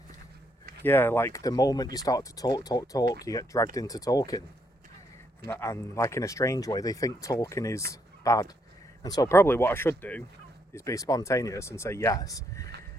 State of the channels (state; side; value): normal; both; correlation 0.75